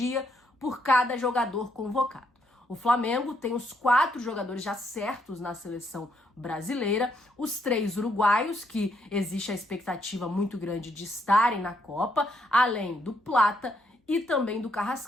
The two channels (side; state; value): both; normal; correlation 0.75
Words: por cada jogador convocado. O Flamengo tem os 4 jogadores já certos na seleção brasileira, os 3 uruguaios, que existe a expectativa muito grande de estarem na Copa, além do Plata e também do